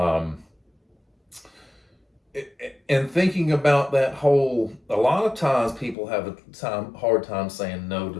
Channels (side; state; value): right; drops out; at 6.0 s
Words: and thinking about that whole, a lot of times people have a hard time saying no to